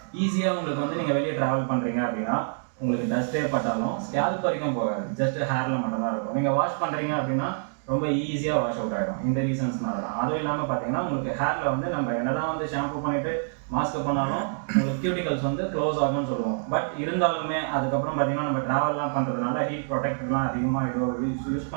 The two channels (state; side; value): silent; left; digital silence